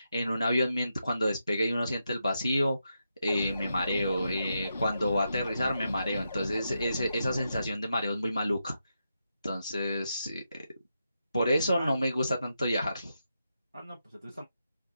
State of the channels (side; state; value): both; inverted; correlation -0.85